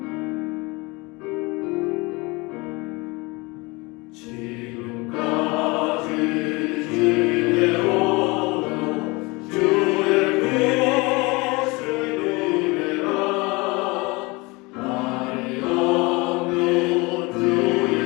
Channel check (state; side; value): quieter; right; 25.3 dB